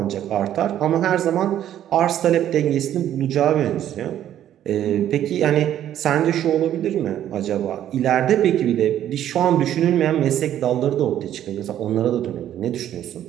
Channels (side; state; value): left; quieter; 11.3 dB